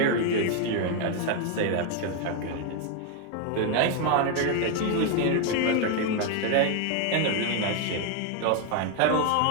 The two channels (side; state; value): both; different; correlation 0.01